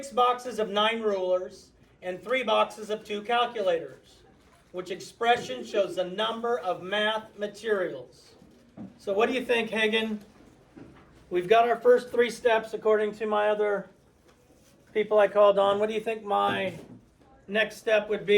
boxes of 9 rulers, and 3 boxes of 2 calculators, which expression shows the number of math materials. So what do you think, Hagen? We've got our first 3 steps according to my other people I called on. What do you think my next step would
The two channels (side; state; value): both; identical; correlation 1.00